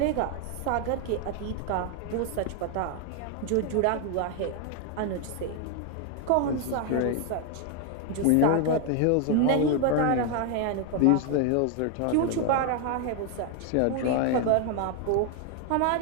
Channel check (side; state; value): both; different; correlation 0.01